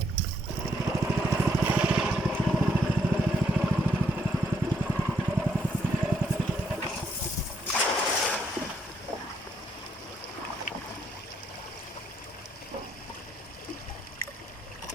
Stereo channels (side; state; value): both; normal; correlation 0.73